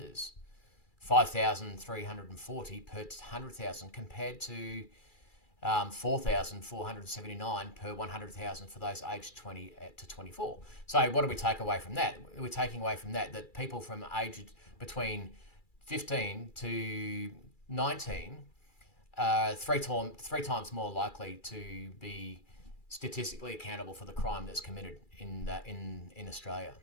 5,340 per 100,000 compared to 4,479 per 100,000 for those aged 20 to 24. So what do we take away from that? We're taking away from that people from aged between 15 to 19 are three times more likely to be statistically accountable for the crime that's committed in Australia.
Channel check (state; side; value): late; right; 2.3 ms